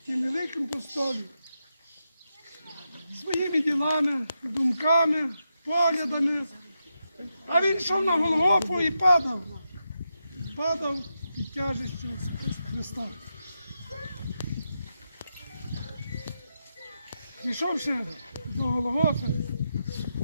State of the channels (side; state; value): both; inverted; correlation -0.86